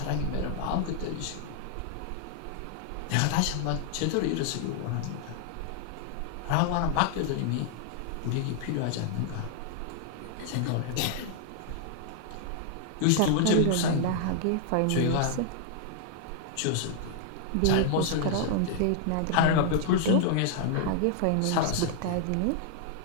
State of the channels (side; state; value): both; different; correlation -0.01